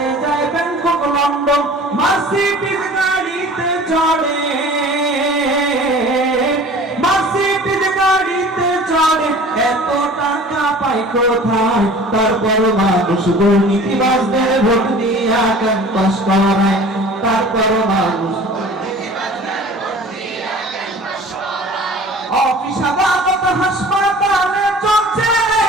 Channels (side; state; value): both; normal; correlation 0.44